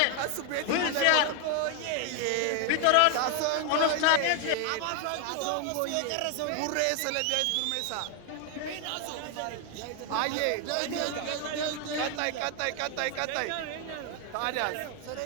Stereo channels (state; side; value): different; both; correlation 0.01